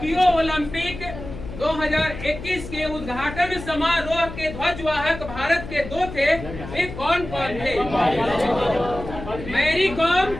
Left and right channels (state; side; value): noise; left; hum, 11 dB below the sound